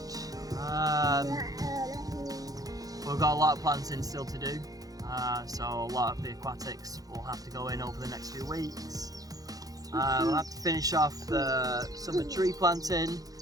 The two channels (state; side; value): late; left; 0.18 ms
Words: we've got a lot of planting still to do, so a lot of the aquatics will have to go in over the next few weeks. We'll have to finish off some of the tree planting